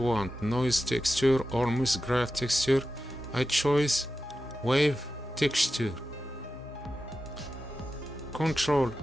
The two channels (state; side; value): normal; both; correlation 0.92